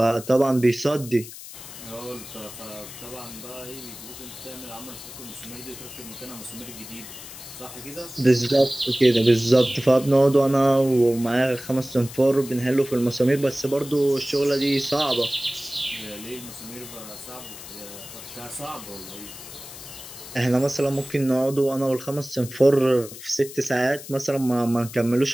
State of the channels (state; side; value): noise; left; hiss, 14 dB below the sound